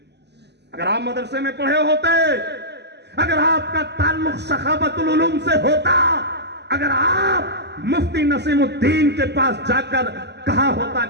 अगर आप मदरसे में पढ़े होते, अगर आपका ताल्लुक सखावतुल उलूम से होता, अगर आप मुफ्ती नसीमुद्दीन के पास जाकर कहा होता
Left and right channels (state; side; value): late; left; 0.50 ms